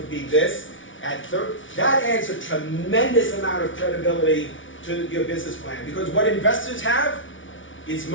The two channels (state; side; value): late; right; 0.56 ms